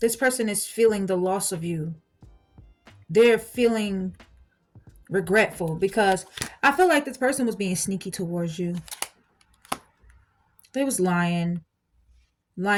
person is feeling the loss of you. They're feeling regretful because I feel like this person was being sneaky towards you. They was lying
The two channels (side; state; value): both; identical; correlation 1.00